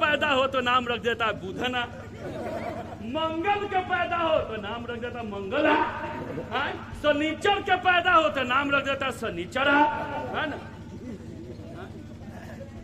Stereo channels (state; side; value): identical; both; correlation 1.00